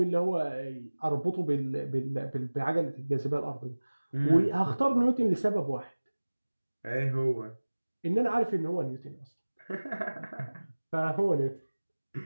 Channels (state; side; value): inverted; both; correlation -1.00